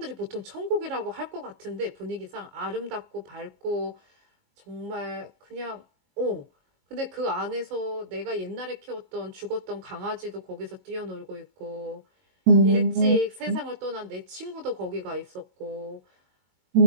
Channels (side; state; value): left; late; 22 ms